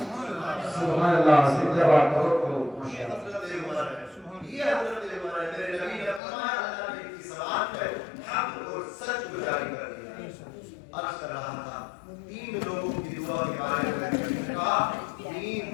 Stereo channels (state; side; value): drops out; right; at 6.2 s